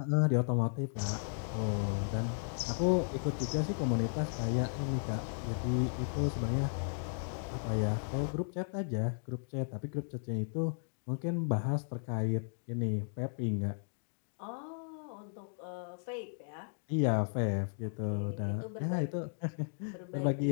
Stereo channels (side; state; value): right; silent; digital silence